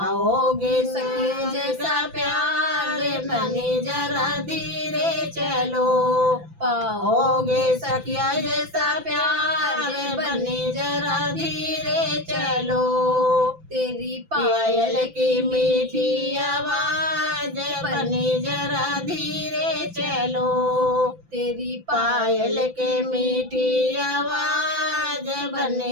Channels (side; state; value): left; late; 5.9 ms